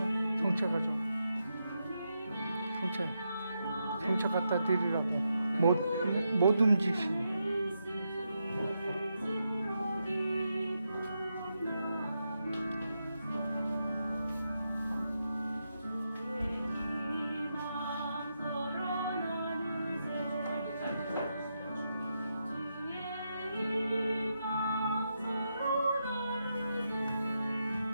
경찰 가져. 경찰 갖다 드리라고. 못 움직이시고.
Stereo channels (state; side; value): inverted; both; correlation -0.84